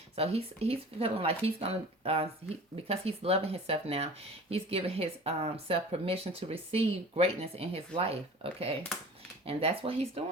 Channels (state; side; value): normal; both; correlation 0.41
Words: So he's feeling like he's going to, because he's loving himself now, he's giving his self permission to receive greatness in his life. Okay. And that's what he's